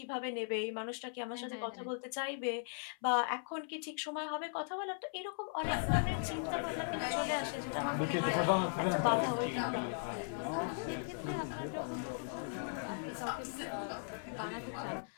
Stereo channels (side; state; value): right; silent; 52 dB below the other